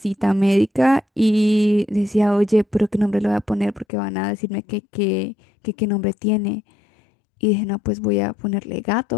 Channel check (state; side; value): drops out; right; at 3.9 s